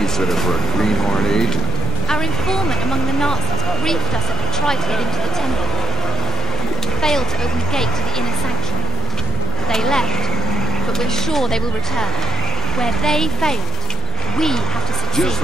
for a greenhorn agent. Our informant among the Nazis briefed us that they tried to get into the temple. Failed to open the gate to the inner sanctuary. They left, but we're sure they will return. Where they failed, we have to succeed. Just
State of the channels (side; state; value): both; normal; correlation 0.57